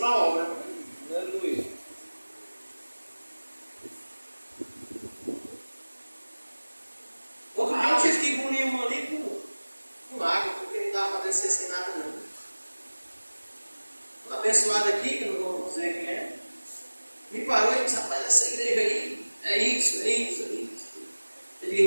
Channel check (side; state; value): both; inverted; correlation -1.00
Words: a obra. Aleluia. Outro dia eu tive que engolir uma ali com água, porque não dava para descer sem nada não. Uma abençoada aqui, que eu não vou dizer quem é, me parece parou e disse, rapaz, essa igreja aí é isso. Eu disse,